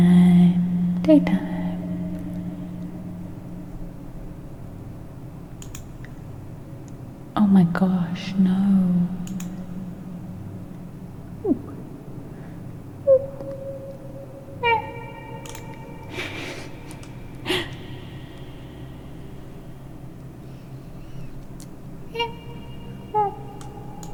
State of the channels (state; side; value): identical; both; correlation 1.00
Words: daytime. Oh my gosh, no.